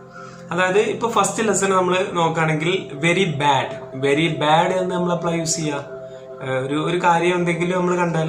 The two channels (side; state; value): both; identical; correlation 1.00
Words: അതായത് ഇപ്പൊ ഫസ്റ്റ് ലെസൺ നമ്മൾ നോക്കുകയാണെങ്കിൽ വെരി ബാഡ് എന്ന് നമ്മൾ അപ്ലൈ യൂസ് ചെയ്യുക. ഒരു കാര്യം എന്തെങ്കിലും നമ്മൾ കണ്ടാൽ